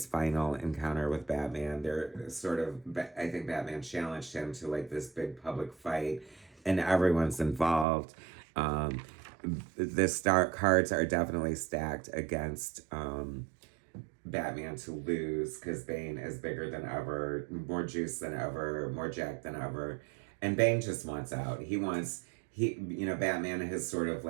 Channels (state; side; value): drops out; left; at 7.9 s